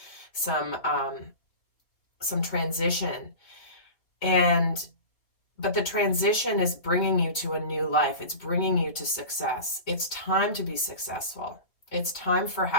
transition, but the transition is bringing you to a new life. It's bringing you to success. It's time to be successful. It's time for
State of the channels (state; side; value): late; right; 3.6 ms